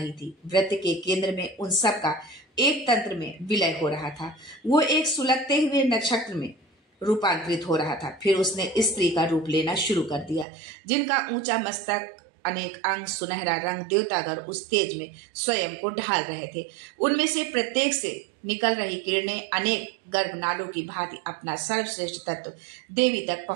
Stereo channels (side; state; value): left; drops out; at 10.5 s